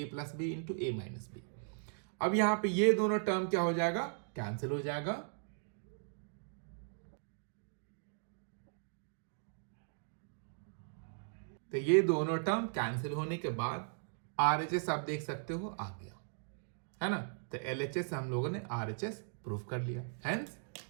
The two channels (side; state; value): left; silent; digital silence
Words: प्लस बी इंटू ए माइनस बी। अब यहां पे ये दोनों टर्म क्या हो जाएगा, कैंसिल हो जाएगा। तो ये दोनों टर्म कैंसिल होने के बाद आरएचएस आप देख सकते हो आ गया, है ना। तो एलएचएस से हम लोगों ने आरएचएस प्रूफ कर लिया, हेंस